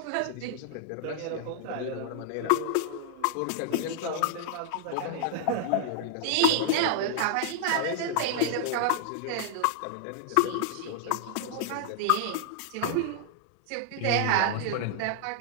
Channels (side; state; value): both; different; correlation -0.01